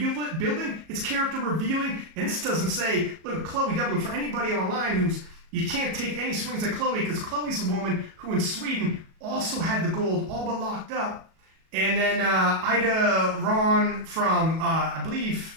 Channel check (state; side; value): late; left; 37 ms